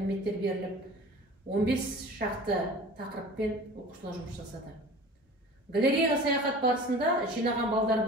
беріліп, 15 шақты тақырыппен оқушылар жұмыс жасады. Галереяға саяхат барысында жинаған балдар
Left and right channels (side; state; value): both; normal; correlation 0.41